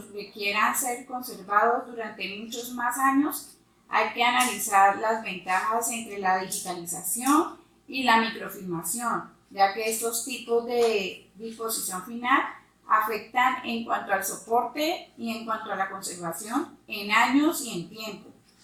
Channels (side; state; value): both; identical; correlation 1.00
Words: requieran ser conservados durante muchos más años. Hay que analizar las ventajas entre la digitalización y la microfilmación, ya que estos tipos de disposición final afectan en cuanto al soporte y en cuanto a la conservación en años y en tiempo,